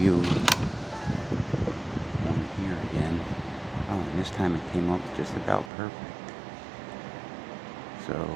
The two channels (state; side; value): drops out; left; at 5.7 s